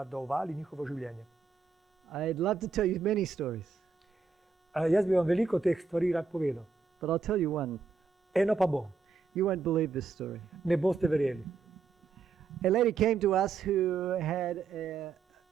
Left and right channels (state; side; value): quieter; left; 4.8 dB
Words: njihovo življenje. I'd love to tell you many stories, Jaz bi vam veliko teh stvari rad povedal. but I'll tell you one. Eno pa bom. You won't believe this story. Ne boste verjeli. A lady came to us who had